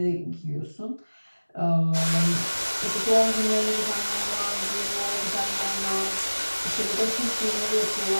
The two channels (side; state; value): both; inverted; correlation -1.00